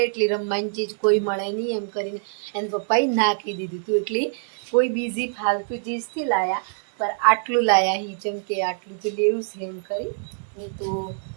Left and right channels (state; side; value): silent; left; digital silence